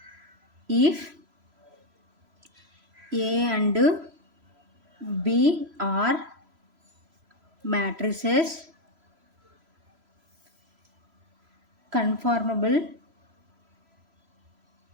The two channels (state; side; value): late; left; 3.0 ms